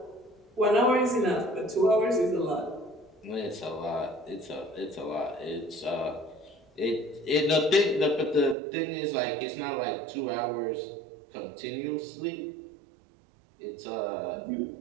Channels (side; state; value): left; drops out; at 8.6 s